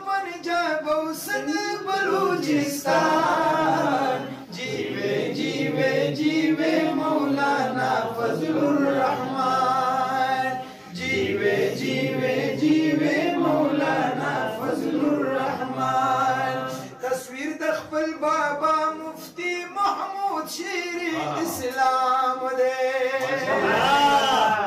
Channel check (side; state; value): both; identical; correlation 1.00